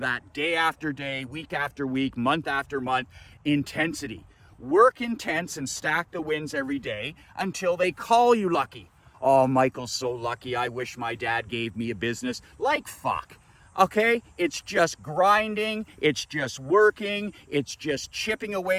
day after day, week after week, month after month, intensity. Work intense and stack the wins every day until they call you lucky. Oh, Michael's so lucky. I wish my dad gave me a business. Like fuck. Okay, it's just grinding, it's just working, it's just chipping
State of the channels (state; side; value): identical; both; correlation 1.00